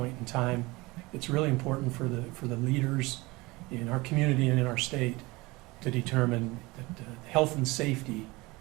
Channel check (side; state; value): left; quieter; 22.7 dB